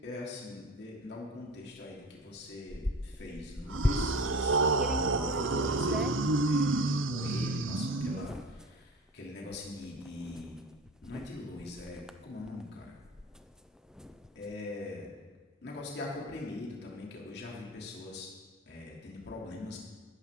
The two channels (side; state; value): both; normal; correlation 0.34